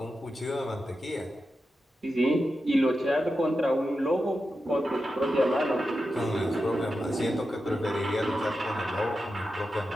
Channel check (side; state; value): both; normal; correlation 0.90